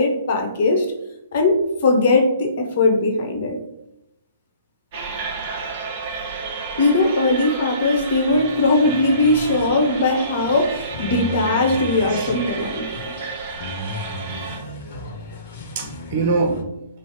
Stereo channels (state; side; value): inverted; both; correlation -0.52